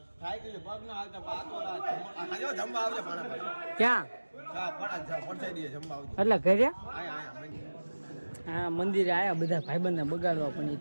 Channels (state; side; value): inverted; both; correlation -1.00